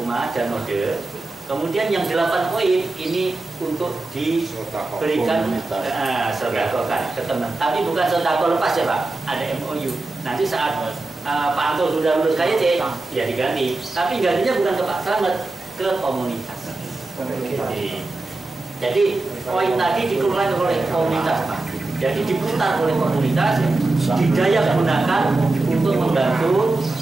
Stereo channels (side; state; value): left; quieter; 3.1 dB